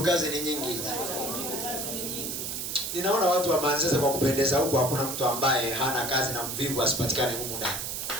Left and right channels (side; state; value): right; noise; hiss, 4 dB below the sound